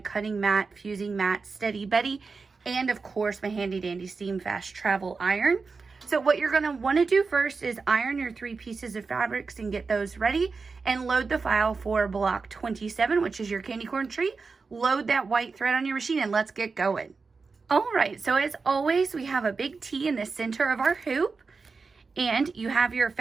mat, fusing mat, Steady Betty, and of course my handy dandy steam fast travel iron. So what you're going to want to do first is iron your 3 pieces of fabrics and get those ready and load the file for block 27, which is your candy corn tree. Load that white thread on your machine and let's get going. All right, so as always, we have a big T in the center of our hoop, and you have your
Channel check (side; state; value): left; quieter; 4.5 dB